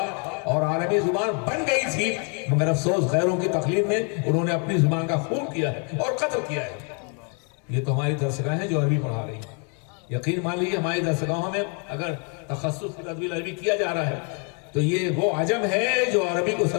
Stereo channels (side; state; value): right; quieter; 38.1 dB